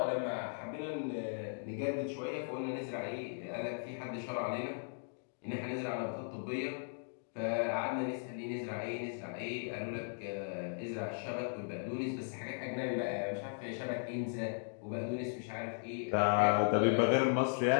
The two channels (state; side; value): silent; right; digital silence